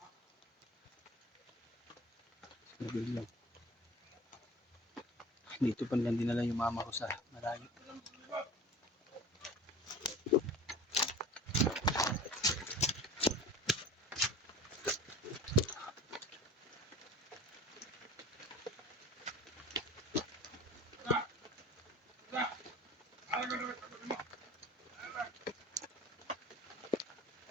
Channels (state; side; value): normal; both; correlation 0.39